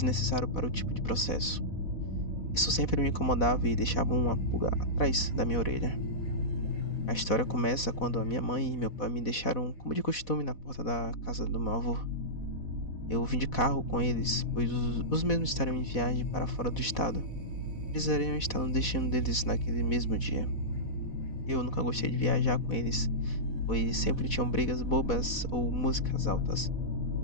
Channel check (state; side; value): late; right; 4.1 ms